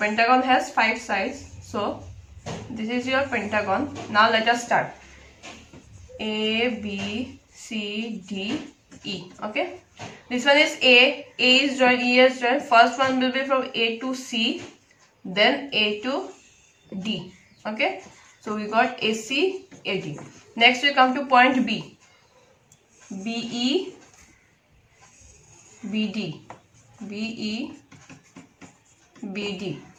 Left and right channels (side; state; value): both; identical; correlation 1.00